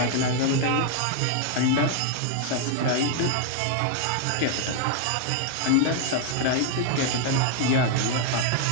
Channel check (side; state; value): both; different; correlation 0.00